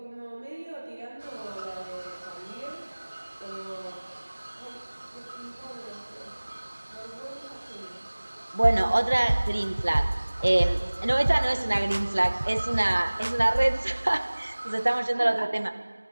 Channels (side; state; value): both; inverted; correlation -1.00